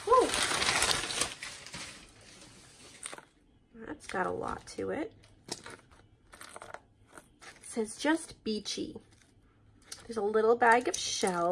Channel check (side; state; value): both; identical; correlation 1.00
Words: Whew. That's got a lot to it. It says just beachy. There's a little bag of